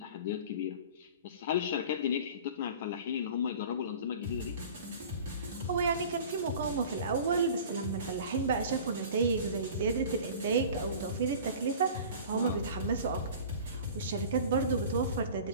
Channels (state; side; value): inverted; both; correlation -0.41